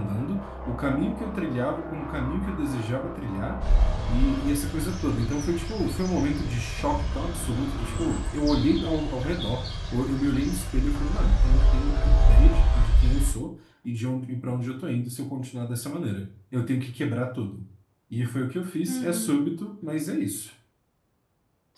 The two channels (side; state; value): both; identical; correlation 1.00